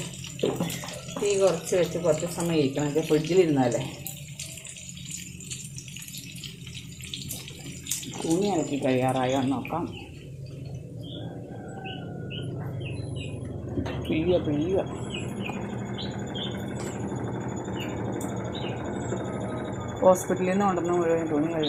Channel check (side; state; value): both; identical; correlation 1.00